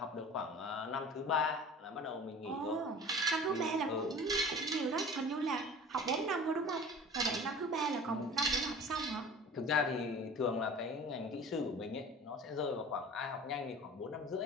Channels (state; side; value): normal; both; correlation 0.41